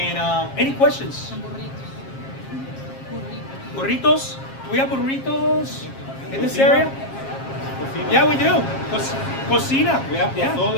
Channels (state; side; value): late; right; 7.4 ms